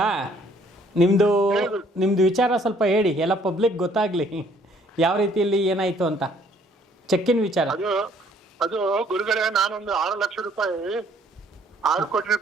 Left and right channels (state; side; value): normal; both; correlation 0.62